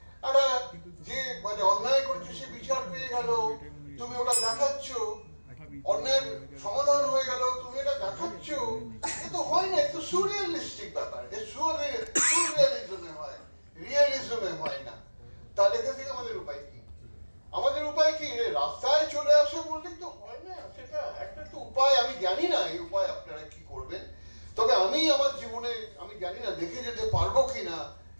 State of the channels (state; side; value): inverted; both; correlation -1.00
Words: একটা যে মানে অন্যায় করেছে সে বিচার পেয়ে গেল, তুমি ওটা দেখাচ্ছ, অন্যায়ের সমাধান হয়ে গেল, তুমি এটা দেখাচ্ছ, এ তো হয় না। এটা সুরিয়ালিস্টিক ব্যাপার, সুরিয়ালিজমে হয়, রিয়েলিজমে হয় না। তা লেখা থেকে আমাদের উপায় কি? রাস্তায় চলে আসে বললেই তো হয় না, সেটা একটা তো উপায়। আমি জানি না এই উপায় আপনারা কি করবেন, তবে আমি আমার জীবনে আমি জানি না দেখে যেতে পারবো কিনা